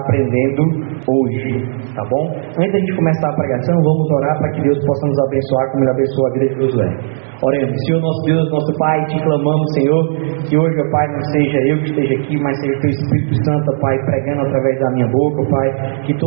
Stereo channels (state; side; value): silent; left; digital silence